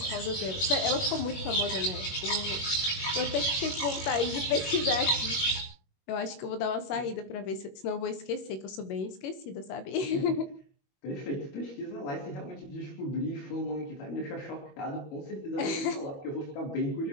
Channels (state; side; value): late; right; 21 ms